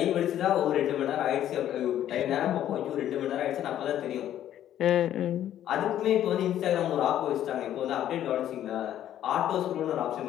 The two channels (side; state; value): right; quieter; 11.5 dB